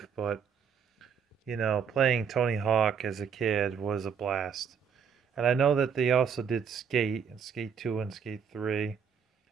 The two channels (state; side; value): quieter; left; 6.9 dB